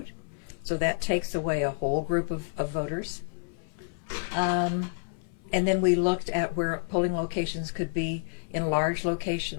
So that takes away a whole group of voters. And then we looked at where polling locations could be in large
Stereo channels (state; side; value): silent; right; 59 dB below the other